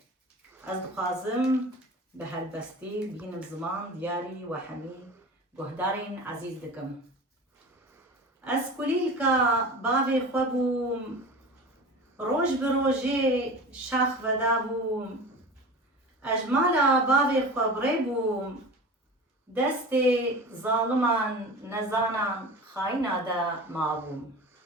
از دخوازم به هلبستی بینم زمان دیاری و همی گهدارین عزیز دکم از کلیل که باوی خواه بوم روش به روژه شاخ ودا بوم اجمالا باوی خواه بری بوم دست ظالمان نزانان خاینه دا ما بوم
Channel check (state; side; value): normal; both; correlation 0.35